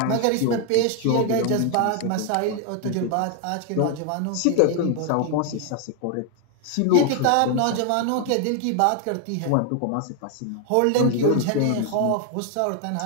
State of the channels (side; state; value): both; different; correlation 0.01